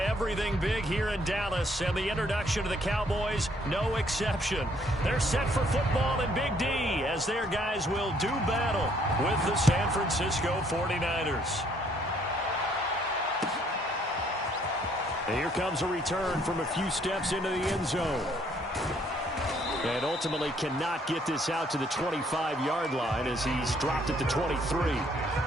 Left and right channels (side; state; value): both; normal; correlation 0.65